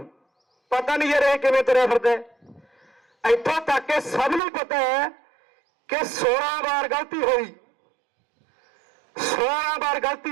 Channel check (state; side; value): drops out; left; at 4.4 s